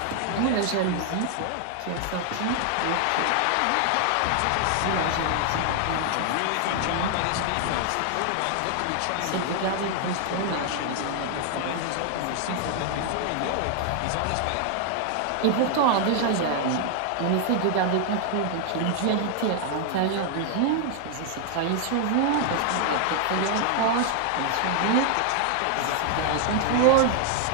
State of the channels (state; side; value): different; both; correlation 0.00